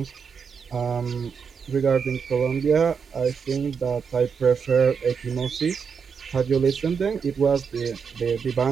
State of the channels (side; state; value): left; quieter; 6.2 dB